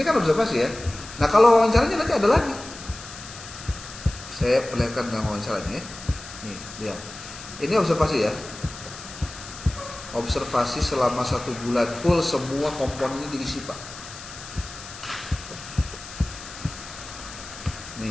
kan observasi ya. Nah kalau wawancaranya nanti ada lagi. Saya perlihatkan dengan wawancaranya ya. Nih, lihat. Ini observasi ya. Observasi selama 1 bulan full, semua komponennya diisi, Pak.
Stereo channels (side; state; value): left; noise; hiss, 14 dB below the sound